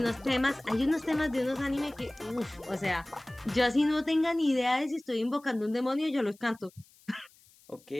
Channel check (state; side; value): noise; left; hiss, 28 dB below the sound